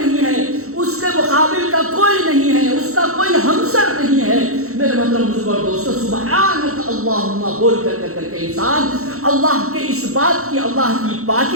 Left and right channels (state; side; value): late; left; 0.64 ms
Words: ہے, اس کے مقابل کا کوئی نہیں ہے, اس کا کوئی ہمسر نہیں ہے. میرے محترم بزرگوں اور دوستو, سبحانک اللہم بول کر کے انسان اللہ کے اس بات کی, اللہ کی